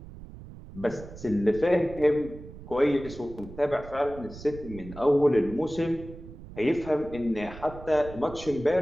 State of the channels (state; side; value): noise; right; rumble, 15 dB below the sound